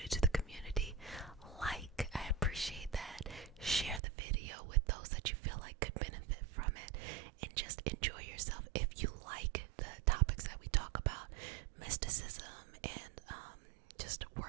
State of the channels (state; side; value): drops out; left; at 4.0 s